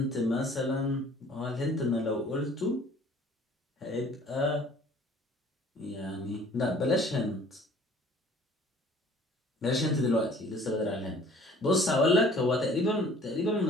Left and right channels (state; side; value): normal; both; correlation 0.52